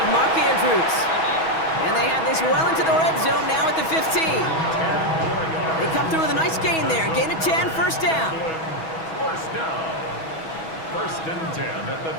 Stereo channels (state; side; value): late; right; 6.2 ms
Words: Mark Andrews. And they have this well into the red zone now at the 15. They come through with a nice gain there. Gain of 10, first down. First down. First and 10 at the